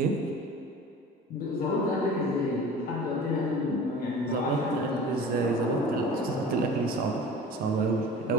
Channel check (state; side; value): normal; both; correlation 0.41